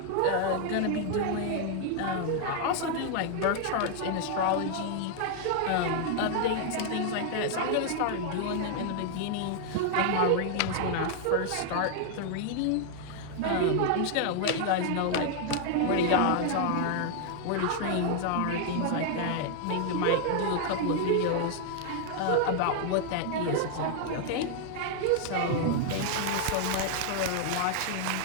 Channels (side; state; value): both; different; correlation 0.00